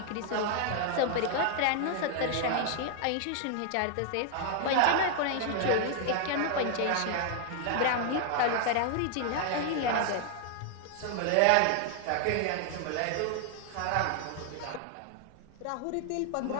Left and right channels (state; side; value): different; both; correlation 0.00